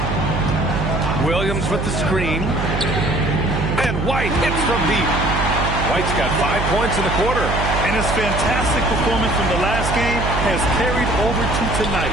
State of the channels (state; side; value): noise; right; hum, 2 dB below the sound